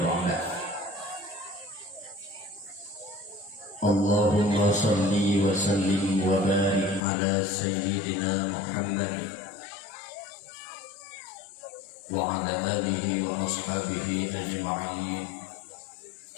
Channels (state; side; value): drops out; right; at 7.0 s